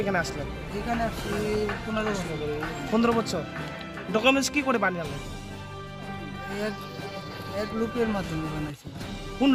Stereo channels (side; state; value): both; identical; correlation 1.00